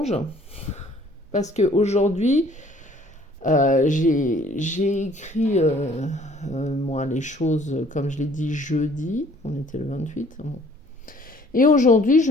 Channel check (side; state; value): both; normal; correlation 0.57